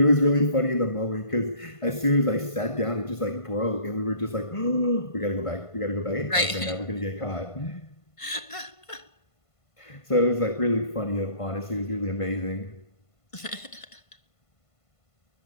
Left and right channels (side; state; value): right; late; 1.5 ms